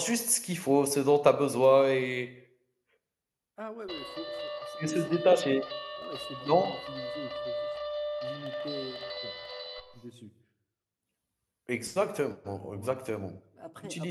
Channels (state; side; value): identical; both; correlation 1.00